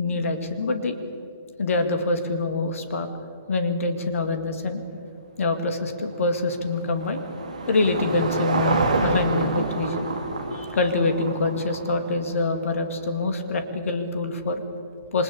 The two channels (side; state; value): both; inverted; correlation -0.55